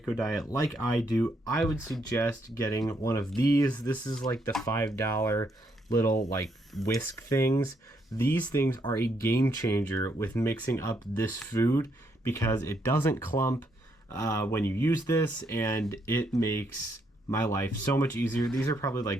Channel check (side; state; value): both; normal; correlation 0.75